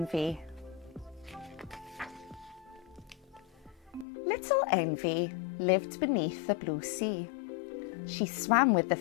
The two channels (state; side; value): drops out; right; at 4.0 s